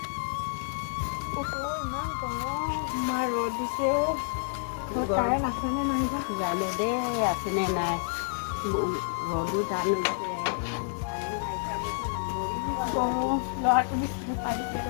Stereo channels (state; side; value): silent; right; digital silence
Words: ইমান গৰম ৰ'দ দিছে কাৰেণ্ট আছেনে নাই জানো দেই আছেনে নাই ৰ'দো জানো ল'ৰাটো